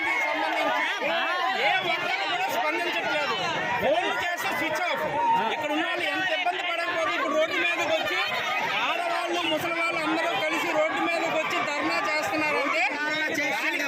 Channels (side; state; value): both; identical; correlation 1.00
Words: ఏ ఒక్కరు కూడా స్పందించట్లేదు. ఫోన్లు చేస్తే స్విచ్ ఆఫ్. ఇక్కడ ఉన్న వాళ్ళు ఎంత ఇబ్బంది పడకపోతే ఇప్పుడు రోడ్డు మీదకి వచ్చి ఆడవాళ్ళు ముసలి వాళ్ళు అందరూ కలిసి రోడ్డు మీదకి వచ్చి ధర్నా చేస్తున్నారంటే దానికి